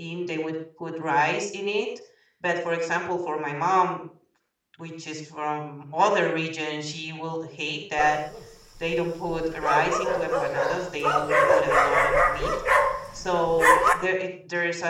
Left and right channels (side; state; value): both; identical; correlation 1.00